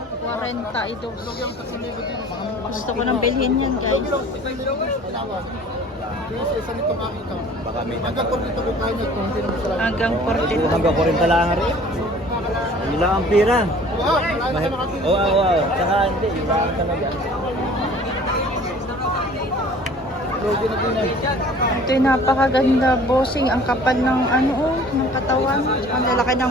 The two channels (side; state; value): both; normal; correlation 0.49